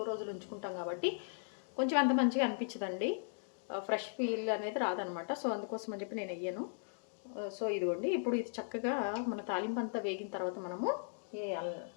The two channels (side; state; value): right; silent; digital silence